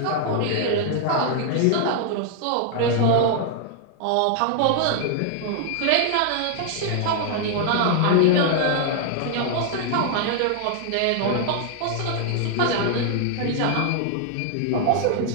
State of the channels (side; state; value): both; different; correlation 0.00